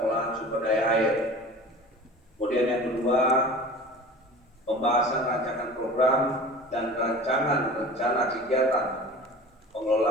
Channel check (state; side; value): normal; both; correlation 0.38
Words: sumber daya air. Kemudian yang kedua, pembahasan rancangan program dan rancangan rencana kegiatan